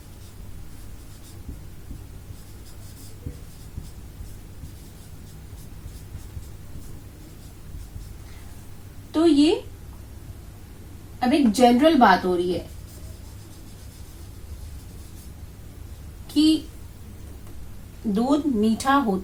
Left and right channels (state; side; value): identical; both; correlation 1.00